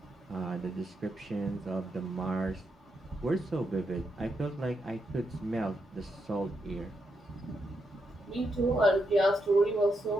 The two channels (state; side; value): normal; both; correlation 0.82